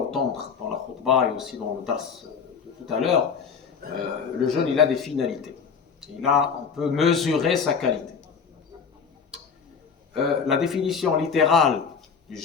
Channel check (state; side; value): quieter; right; 6.1 dB